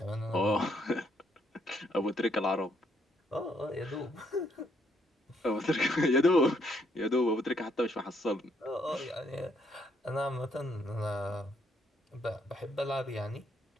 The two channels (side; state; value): both; normal; correlation 0.71